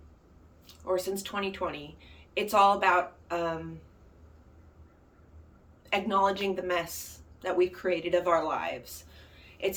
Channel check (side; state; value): both; identical; correlation 1.00